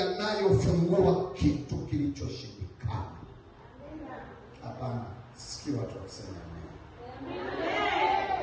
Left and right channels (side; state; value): both; identical; correlation 1.00